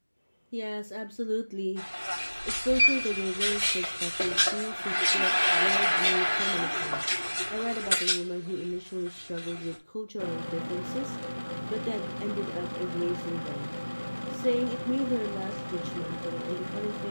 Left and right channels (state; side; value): inverted; both; correlation -1.00